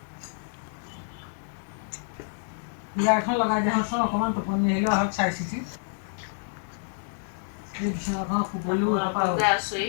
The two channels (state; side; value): silent; right; digital silence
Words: বিয়া এখন লগাই দিয়াচোন অকণমান টোপনি আহিলে হওক চাই চিতি এই বিচনাখন শুবলৈও আপোনালোকে